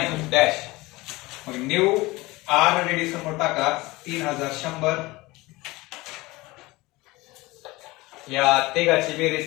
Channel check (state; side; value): quieter; right; 21.2 dB